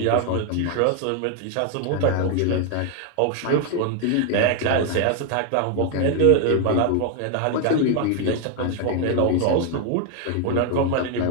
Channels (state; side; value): different; both; correlation 0.00